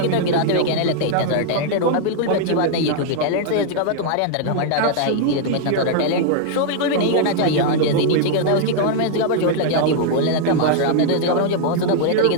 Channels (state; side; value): different; both; correlation 0.00